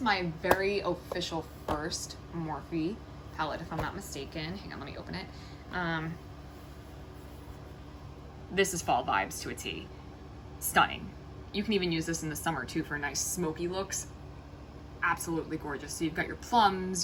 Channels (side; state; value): both; identical; correlation 1.00